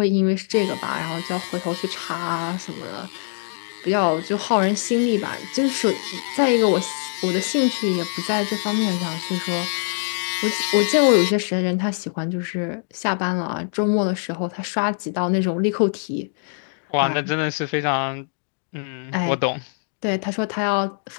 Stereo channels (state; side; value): silent; right; 63 dB below the other